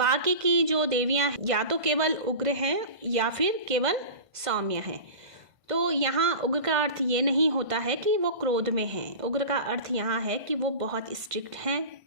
की जो देवियां या तो केवल उग्र हैं या फिर केवल सौम्य हैं। तो यहाँ उग्र का अर्थ ये नहीं होता है कि वो क्रोध में हैं। उग्र का अर्थ यहाँ है कि वो बहुत स्ट्रिक्ट हैं,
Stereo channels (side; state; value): left; late; 1.5 ms